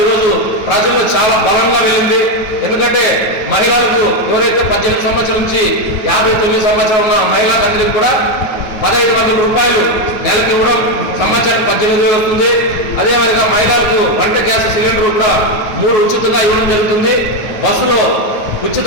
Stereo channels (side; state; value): right; late; 9.2 ms